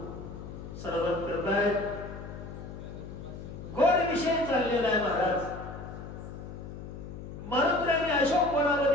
सर्वत करतायत गोड विषय चाललेला आहे महाराज मरुद्राने अशोक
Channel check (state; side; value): noise; left; hum, 11 dB below the sound